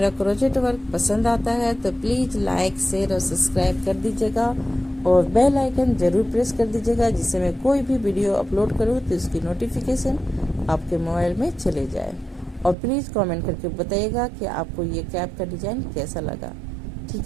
क्रोचेट वर्क पसंद आता है तो प्लीज़ लाइक शेयर और सब्सक्राइब कर दीजिएगा और बेल आइकन ज़रूर प्रेस कर दीजिएगा, जिससे मैं कोई भी वीडियो अपलोड करूँ तो इसकी नोटिफिकेशन आपके मोबाइल में चले जाए। और प्लीज़ कमेंट करके बताइएगा कि आपको ये कैप का डिज़ाइन कैसा लगा,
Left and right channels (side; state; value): left; drops out; at 12.8 s